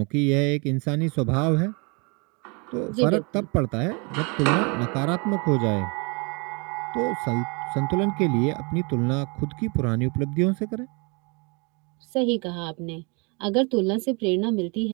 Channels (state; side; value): quieter; left; 31.6 dB